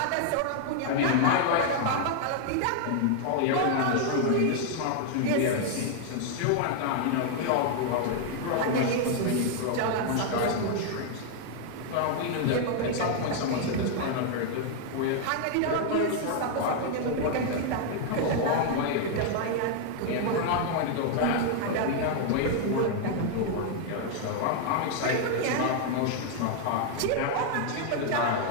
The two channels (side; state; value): both; different; correlation 0.00